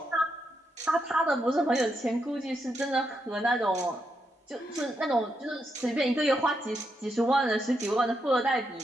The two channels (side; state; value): both; normal; correlation 0.82